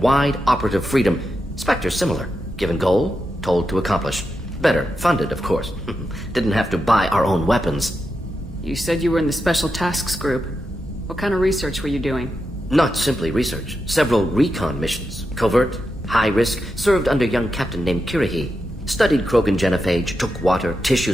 wide operative freedom. Spectres similar, given goal, told to accomplish. Better, funded, of course. Didn't have to buy our own weapons. You said you were in the Special Tasks Group. What kind of research were you doing? Not simply research. Several recon missions. Covert, high risk, served under young captain named Kirihi. Studied Krogan genophage, took water, tissue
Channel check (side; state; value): both; normal; correlation 0.87